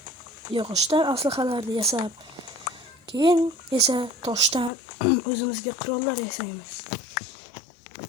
yog'ochdan aslahalarni yasab, keyin esa toshdan o'zimizga qurollar yasaymiz.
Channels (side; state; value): right; drops out; at 4.7 s